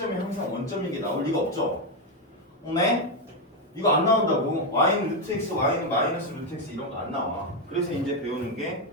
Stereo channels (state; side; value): normal; both; correlation 0.05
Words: 항상 원점인 게 나올 리가 없죠. 네? 이거 안 나온다고. y는 루트 x, y는 마이너스 루트 x 이런 거 안 나와. 그래서 이제 배우는 게